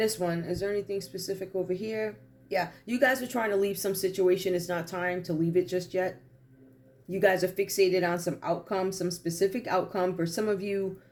one, is there anything specific over here? Yeah, you guys are trying to leave some situation. It's not time to leave it just yet. You guys are fixated on some outcome, some specific outcome. For some of you,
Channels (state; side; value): identical; both; correlation 1.00